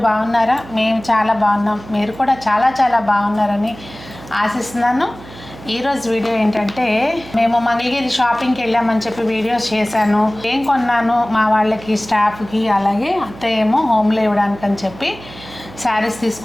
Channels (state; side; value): noise; right; hum, 17 dB below the sound